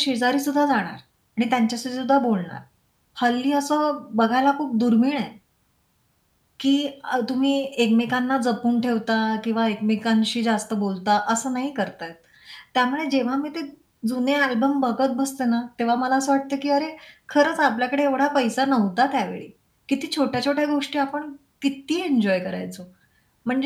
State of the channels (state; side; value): identical; both; correlation 1.00